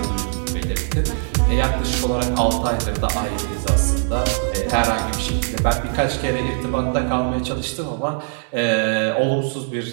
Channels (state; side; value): silent; left; 65 dB below the other